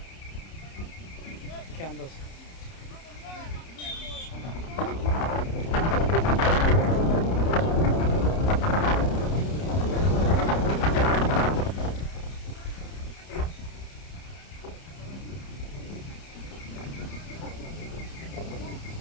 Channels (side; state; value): right; late; 30 ms